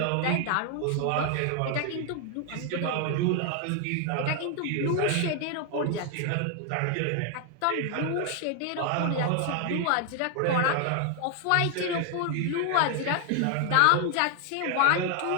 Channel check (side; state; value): both; different; correlation 0.00